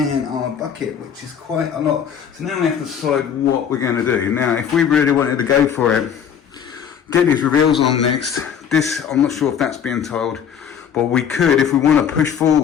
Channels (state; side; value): quieter; right; 8.0 dB